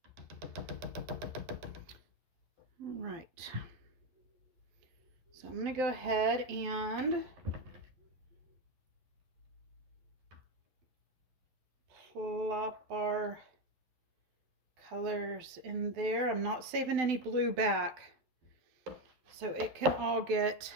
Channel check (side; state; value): left; late; 11 ms